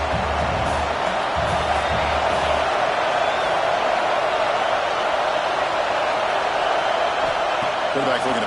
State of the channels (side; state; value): both; identical; correlation 1.00